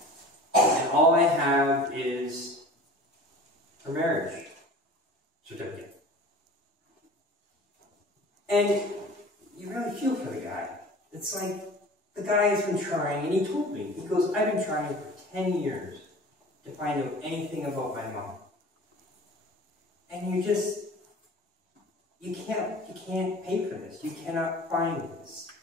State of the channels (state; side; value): normal; both; correlation 0.42